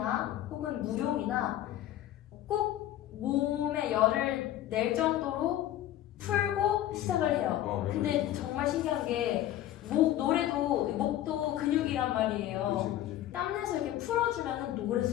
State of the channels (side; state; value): right; quieter; 12.9 dB